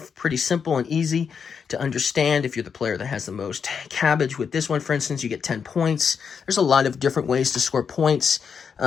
pretty simple and easy to understand. If you're the player that has the most cabbage with this one, for instance, you get 10 points. There's a lot of different ways to score points.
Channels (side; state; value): right; quieter; 6.5 dB